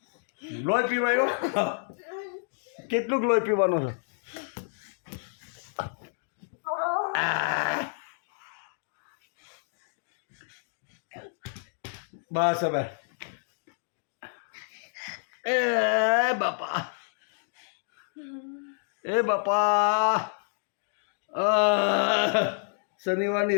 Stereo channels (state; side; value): silent; right; digital silence